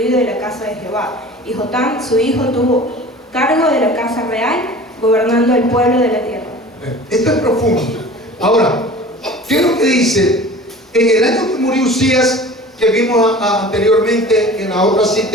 de la casa de Jehová. Y Jotam, su hijo, tuvo cargo de la casa real, gobernando el pueblo de la tierra. Esto es profundo. Ahora, ¿qué es lo que dice? En el año que murió Usías, que vimos anteriormente en la otra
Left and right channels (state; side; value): normal; both; correlation 0.41